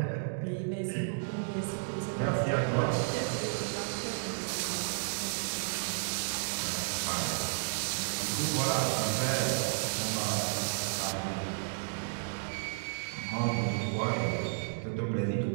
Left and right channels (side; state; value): left; silent; digital silence